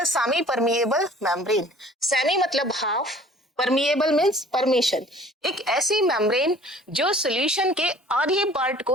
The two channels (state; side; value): normal; both; correlation 0.50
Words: semi-permeable membrane. Semi मतलब half, permeable means permission. एक ऐसी membrane जो solution के आधे part को